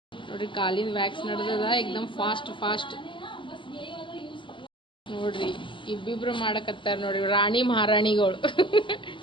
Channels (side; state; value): right; late; 0.24 ms